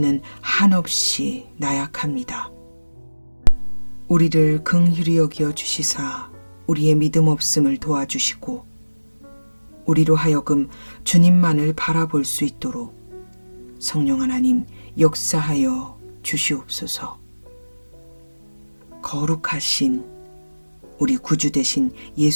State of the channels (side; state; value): both; inverted; correlation -1.00